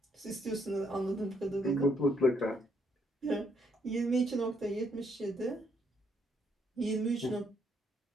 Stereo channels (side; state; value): both; normal; correlation 0.72